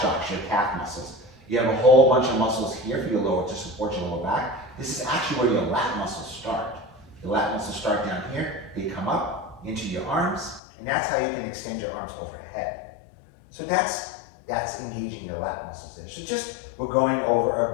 your calf muscles. You have a whole bunch of muscles here for your lower, to support your lower back. This is actually where your lat muscles start. The lat muscles start down here, they come up into your arms, and that's how you can extend your arms overhead. So that's engaging your lat muscles there. So just, we're going over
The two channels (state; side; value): drops out; right; at 10.6 s